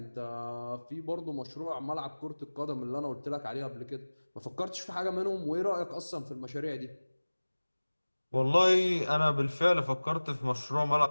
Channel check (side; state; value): both; inverted; correlation -1.00